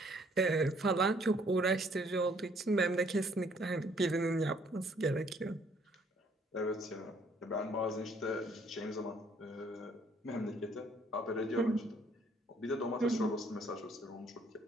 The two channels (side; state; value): both; normal; correlation 0.63